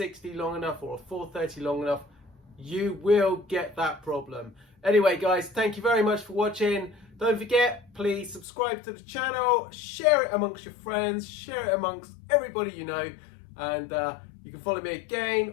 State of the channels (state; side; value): drops out; right; at 8.5 s